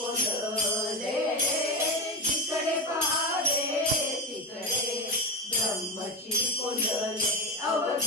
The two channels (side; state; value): both; normal; correlation 0.16